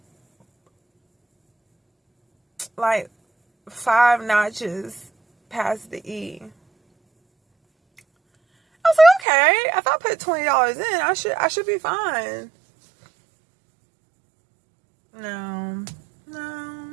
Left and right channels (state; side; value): drops out; left; at 9.2 s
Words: 5 notches past the E. I was like, okay, if I put $20 in, I should be fine. No.